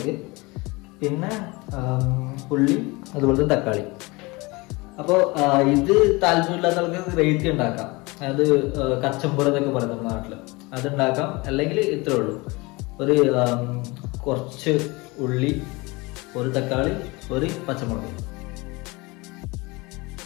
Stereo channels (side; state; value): right; quieter; 24.6 dB